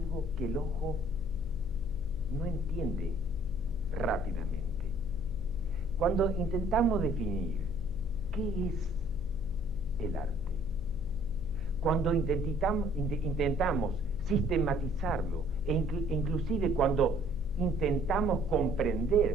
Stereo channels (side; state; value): left; noise; hum, 12 dB below the sound